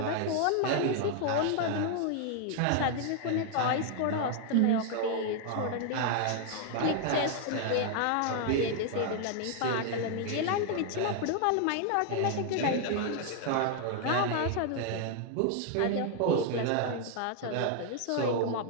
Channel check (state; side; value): different; both; correlation 0.00